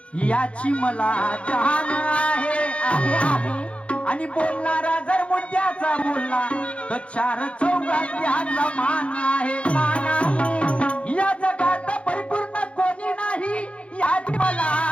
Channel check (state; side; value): late; right; 0.061 ms